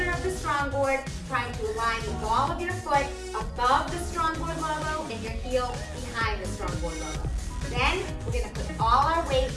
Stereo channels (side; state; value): both; identical; correlation 1.00